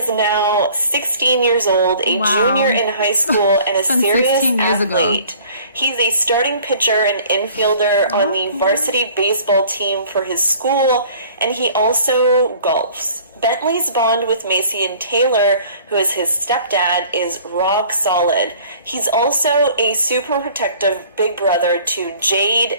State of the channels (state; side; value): inverted; both; correlation -0.51